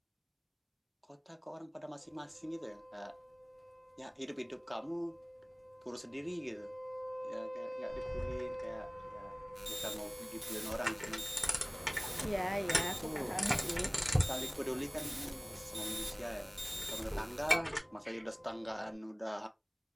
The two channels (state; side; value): identical; both; correlation 1.00